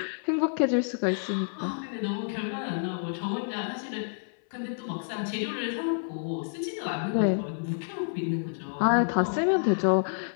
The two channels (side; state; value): right; silent; 59 dB below the other